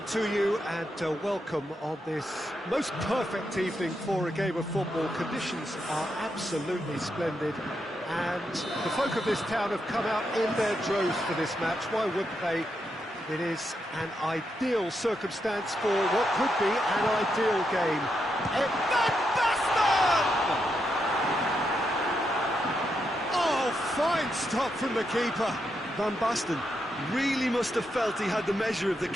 to you and welcome on this most perfect evening for a game of football. Conditions are absolutely splendid and the folk of this town have come out in their droves for this match. Why wouldn't they? It is an ideal circumstance for what could be an ideal game. Van Basten! Oh, fine stop from the keeper. Van Basten really must have felt he had the measure of the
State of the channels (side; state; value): both; normal; correlation 0.82